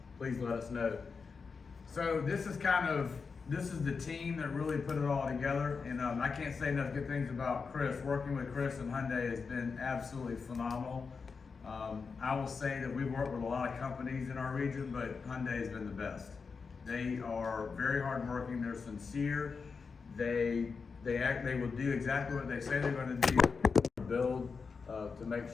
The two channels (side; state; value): right; quieter; 5.1 dB